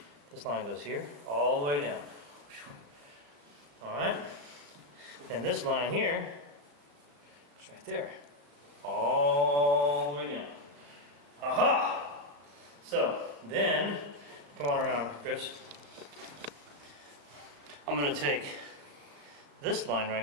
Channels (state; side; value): late; left; 35 ms